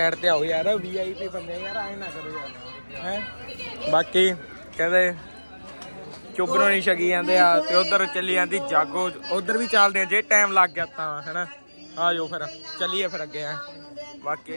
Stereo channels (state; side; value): inverted; both; correlation -1.00